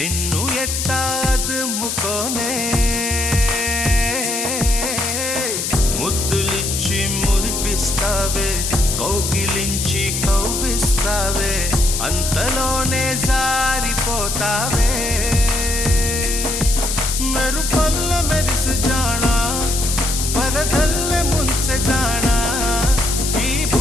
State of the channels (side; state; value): left; noise; hiss, 2 dB below the sound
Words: ఎట్టా అదుముకోనే ముద్దులిచ్చి మురిపిస్తావే కౌగిలించి కౌగిస్తావే అంతలోనే జారిపోతావే మెరుపల్ల మెరిసి జానా వరదల్లె ముంచె జానా ఈ